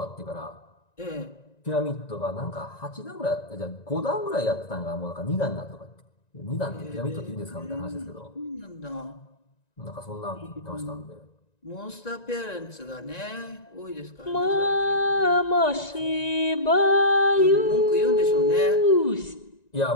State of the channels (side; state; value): right; late; 1.9 ms